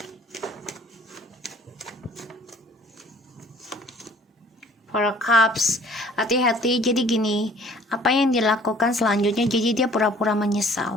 Four Cups. Hati-hati. Jadi gini, apa yang dilakukan selanjutnya, jadi dia pura-pura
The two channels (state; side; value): normal; both; correlation 0.53